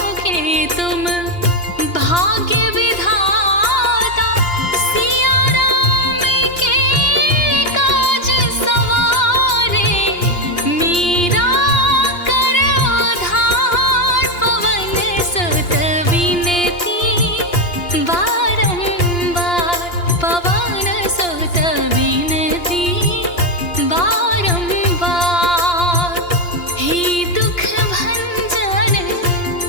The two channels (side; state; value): right; late; 2.9 ms